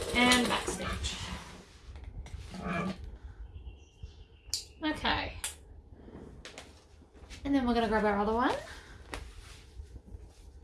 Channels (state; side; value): identical; both; correlation 1.00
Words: and back stitch. Okay. And then we're going to grab our other one.